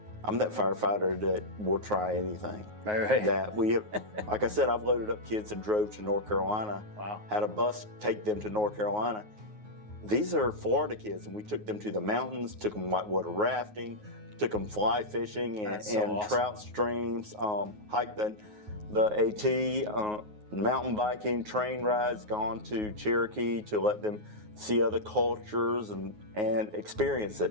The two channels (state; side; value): late; left; 9.4 ms